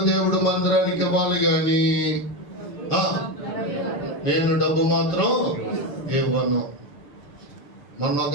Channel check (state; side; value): late; right; 7.0 ms